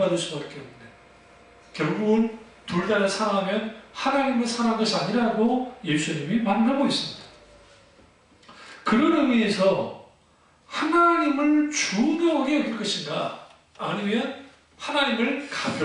수밖에 없는. 결국은 둘 다를 사랑하면 하나님을 사랑한 것이 아니라고 예수님이 말하고 있습니다. 그런 의미에서 하나님을 중요하게 여길 것인가? 아니면 하나님을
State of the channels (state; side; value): identical; both; correlation 1.00